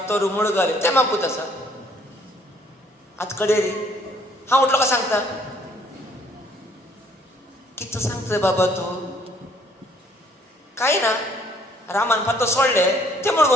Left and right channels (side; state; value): both; normal; correlation 0.63